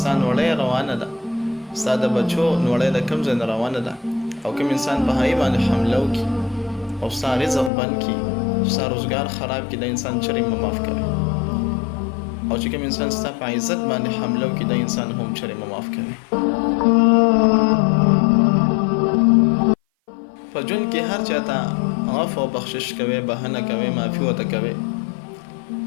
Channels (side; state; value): right; drops out; at 7.7 s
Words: ستا نوړۍ روانه ده، ستا د بچو نوړۍ د کوم ځای نه روانه ده، او کوم انسان په هغې باندې حمله وکړي او ستا رزق بند کړي، ستا روزګار خراب کړي، دا انسان چېرې مه معاف کوئ. او چې کوم انسان ستا په عزت باندې حمله وکړي، دا انسان هم چېرې مه معاف کوئ. په ژوند کې هر چاته عفو او بخشش کوي، بهانه کوي، معافي ورته کوي،